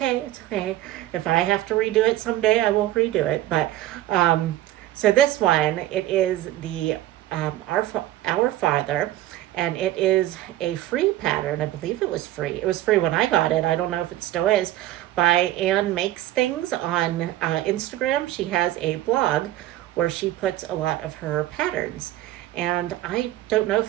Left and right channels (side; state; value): left; quieter; 14.6 dB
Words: It's okay. If I have to redo it someday, I will redo it. But so this one, it is the Our Father, and it is a free pattern. I believe it was free. It was free when I got it. I don't know if it still is. By Anne Makes Things on Instagram. She has a blog where she puts a lot of her patterns. And I don't know